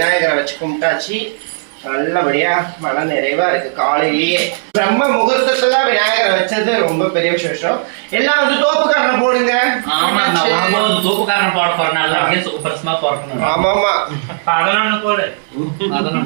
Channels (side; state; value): left; silent; digital silence